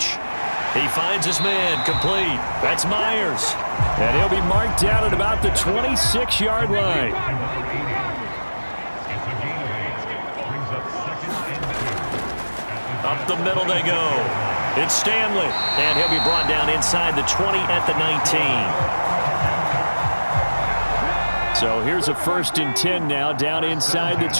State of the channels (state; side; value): inverted; both; correlation -1.00